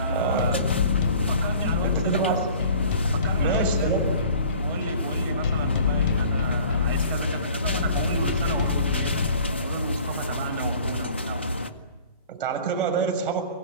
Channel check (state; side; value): inverted; both; correlation -0.48